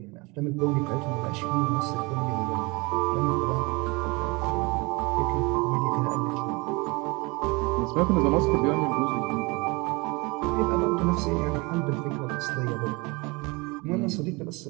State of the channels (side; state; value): left; quieter; 26.1 dB